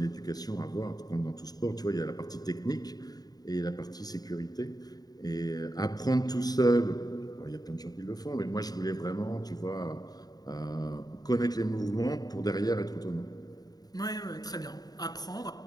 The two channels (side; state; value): right; late; 0.19 ms